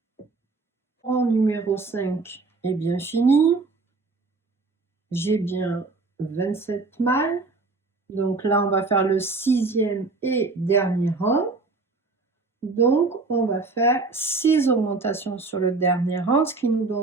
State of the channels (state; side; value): quieter; left; 3.8 dB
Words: Rang numéro 5 est bien fini. J'ai bien 27 mailles. Donc là, on va faire le sixième et dernier rang. Donc, on va faire 6 augmentations sur le dernier rang, ce qui nous